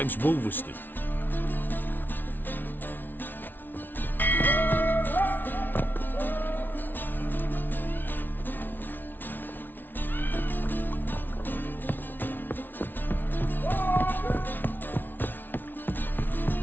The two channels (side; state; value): right; late; 0.092 ms